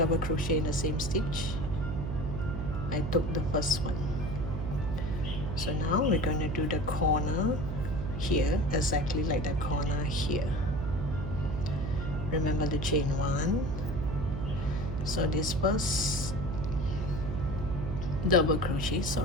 crochet in the same stitch. I took the first one. So now we're going to do the corner here, exactly like the corner here. Remember the chain 1. So this first double crochet,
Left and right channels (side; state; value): right; noise; hum, 4 dB below the sound